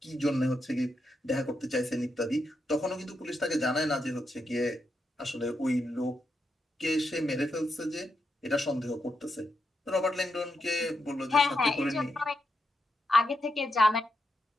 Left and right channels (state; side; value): normal; both; correlation 0.84